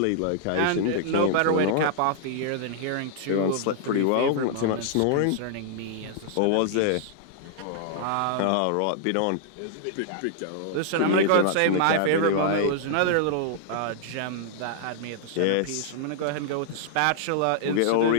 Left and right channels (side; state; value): both; different; correlation -0.01